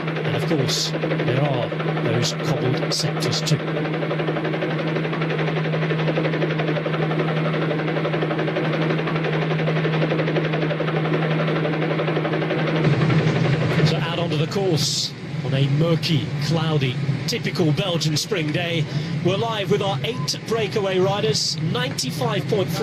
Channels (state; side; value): identical; both; correlation 1.00